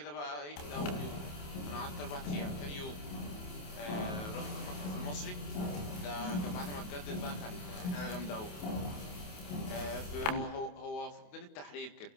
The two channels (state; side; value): late; right; 28 ms